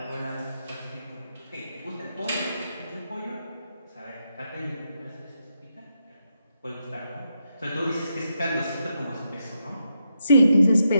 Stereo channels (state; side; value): inverted; both; correlation -0.83